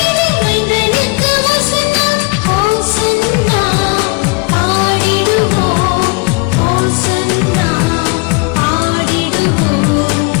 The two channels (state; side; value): quieter; right; 29.2 dB